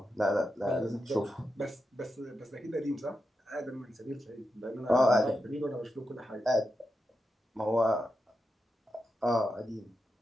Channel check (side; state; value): both; normal; correlation 0.88